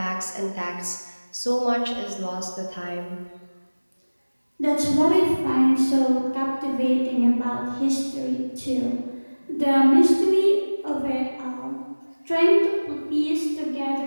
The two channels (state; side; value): inverted; both; correlation -1.00